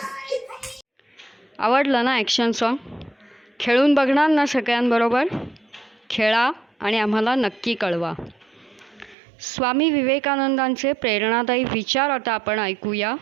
भैया आवडलं ना ॲक्शन सॉन्ग? खेळून बघणार ना सगळ्यांबरोबर? खेळा आणि आम्हाला नक्की कळवा. स्वामी विवेकानंदांचे प्रेरणादायी विचार आता आपण ऐकूया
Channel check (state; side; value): drops out; left; at 9.2 s